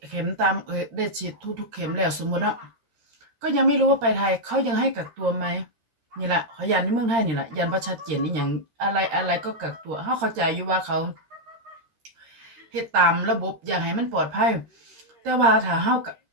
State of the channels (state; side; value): late; left; 13 ms